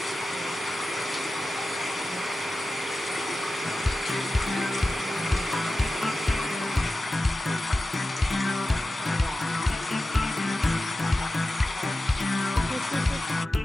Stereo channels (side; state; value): both; normal; correlation 0.94